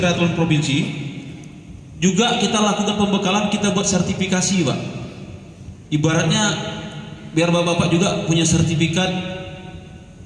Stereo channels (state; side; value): identical; both; correlation 1.00